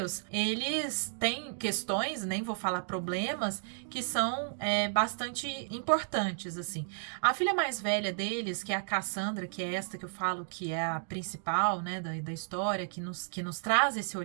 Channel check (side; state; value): left; silent; digital silence